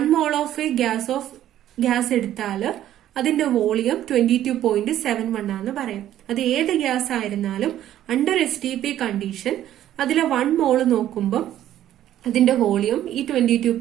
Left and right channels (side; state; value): left; quieter; 12.2 dB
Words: mole ഓഫ് എ ഗ്യാസ് എടുത്താൽ അതിന്റെ വോളിയം 22.71 ആണെന്ന് പറയാം. അത് ഏത് ഗ്യാസ് ആയിരുന്നാലും അണ്ടർ STP കണ്ടീഷൻ അതിലെ 1 mole നോക്കുമ്പോൾ അതിന്റെ വോളിയം ഈ